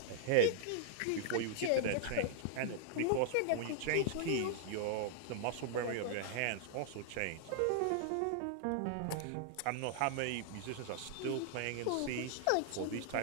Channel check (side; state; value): both; different; correlation -0.01